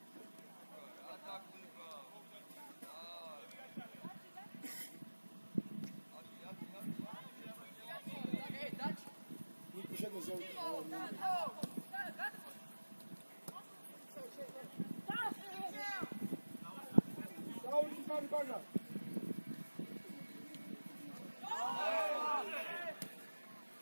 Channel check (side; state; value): both; inverted; correlation -1.00